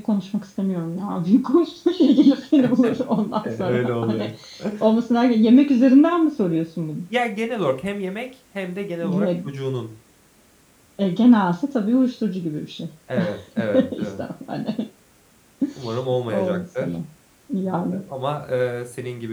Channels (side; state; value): both; identical; correlation 1.00